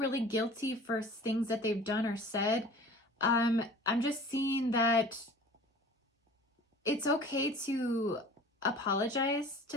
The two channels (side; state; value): both; normal; correlation 0.44